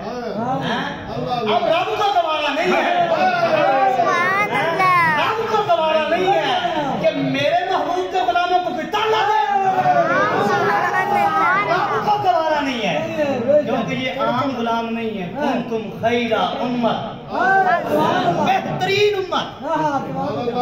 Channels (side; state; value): both; identical; correlation 1.00